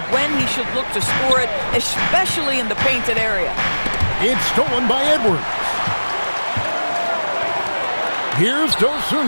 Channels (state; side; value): inverted; both; correlation -1.00